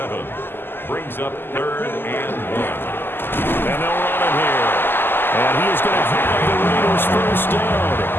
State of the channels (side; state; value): right; late; 0.10 ms